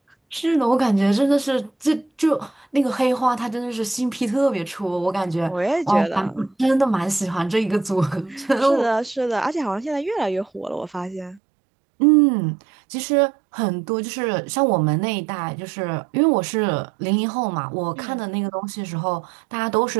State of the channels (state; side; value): drops out; left; at 11.4 s